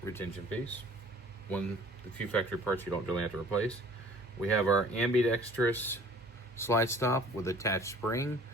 retention piece. The few factory parts you don't really have to replace. We have our ambidextrous slide stop with attached spring.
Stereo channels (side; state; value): both; normal; correlation 0.51